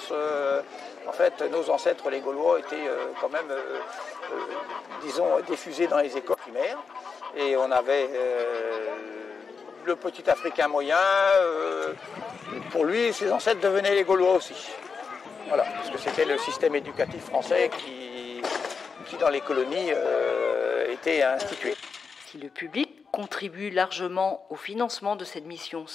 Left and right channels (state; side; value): quieter; right; 5.3 dB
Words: en fait, nos ancêtres, les Gaulois, étaient quand même, disons, diffusés dans les écoles primaires. Et on avait le petit Africain moyen, pour lui, ses ancêtres devenaient les Gaulois aussi. Voilà, parce que c'était le système éducatif français qui dans les colonies, était institué. Si le public contribue largement au financement de cette mission